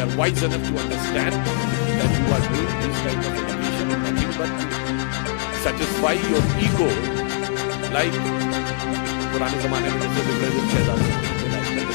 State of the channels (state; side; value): silent; right; digital silence